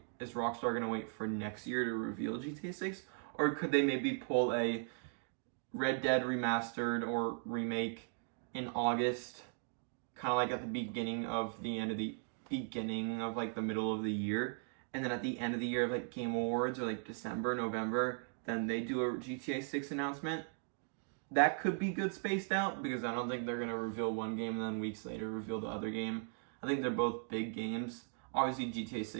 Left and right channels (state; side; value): silent; left; 52 dB below the other